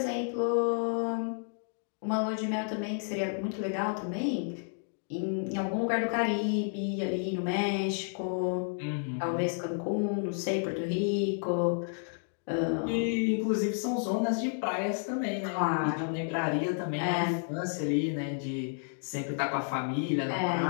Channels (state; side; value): silent; right; 57 dB below the other